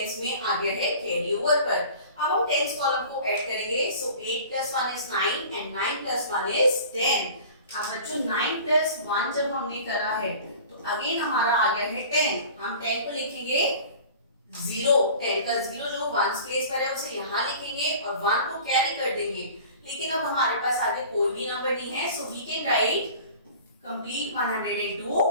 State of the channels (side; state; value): both; inverted; correlation -0.43